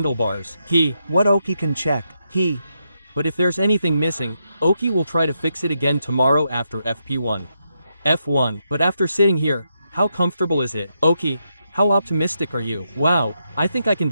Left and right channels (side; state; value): both; inverted; correlation -0.82